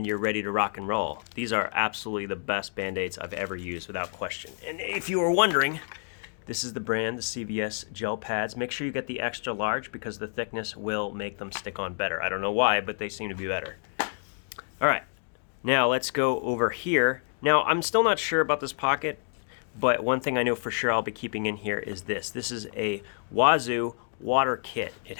you're ready to rock and roll. These are absolutely the best band-aids I've ever used, without question. And if you were wondering, this is the brand, the CVS gel pads. Make sure you get the extra large because the thickness will make them stick on better. I don't know why, but they seem to be better. All right, now let's go over here. Now, I'm still not sure about this pocket, but one thing I know for sure I'll be keeping in here is this. This is a Wazoo water kit. It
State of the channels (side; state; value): right; silent; 59 dB below the other